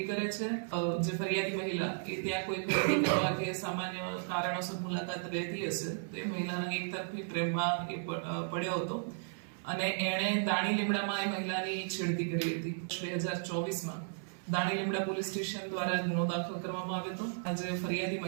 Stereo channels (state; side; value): silent; left; 55 dB below the other